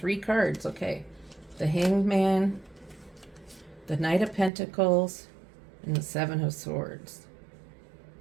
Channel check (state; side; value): drops out; left; at 4.5 s